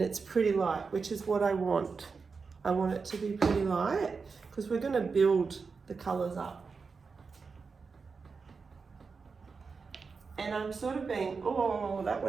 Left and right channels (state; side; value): quieter; left; 4.9 dB